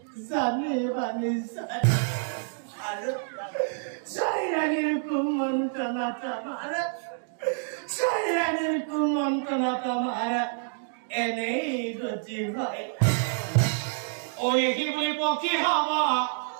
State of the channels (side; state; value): left; silent; digital silence